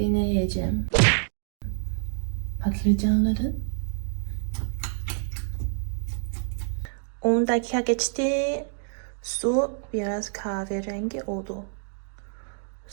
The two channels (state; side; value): silent; left; digital silence